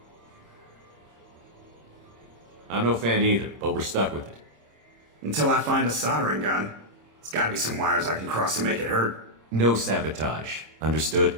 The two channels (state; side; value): late; left; 26 ms